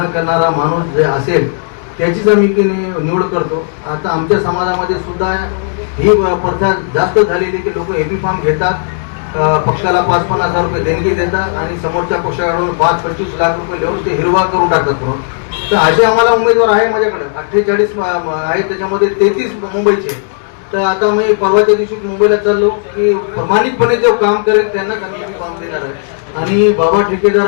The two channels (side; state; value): right; silent; digital silence